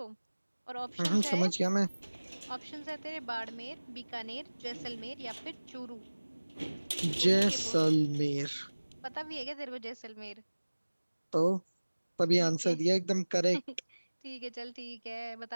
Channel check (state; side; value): inverted; both; correlation -1.00